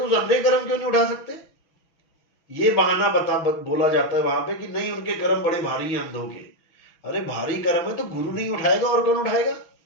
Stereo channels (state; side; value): late; right; 6.0 ms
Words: तो उस अंधे कर्म क्यों नहीं उठा सकते? ये बहाना बोला जाता है वहां पे कि नहीं उनके कर्म बड़े भारी हैं अंधों के। अरे भारी कर्म है तो गुरु नहीं उठाएगा और कौन उठाएगा?